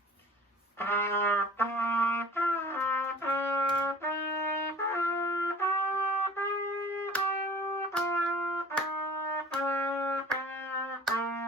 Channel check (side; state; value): both; normal; correlation 0.46